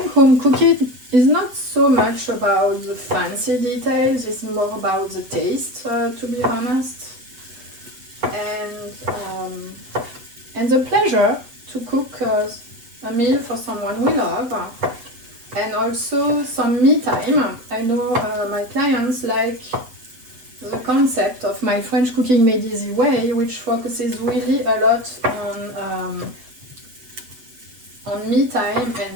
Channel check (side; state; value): left; late; 8.0 ms